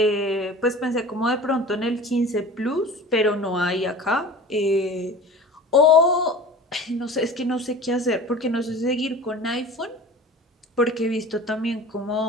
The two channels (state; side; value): normal; both; correlation 0.39